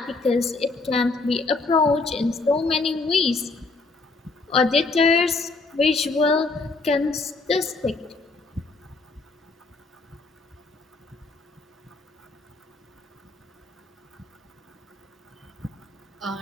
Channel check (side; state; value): right; quieter; 3.6 dB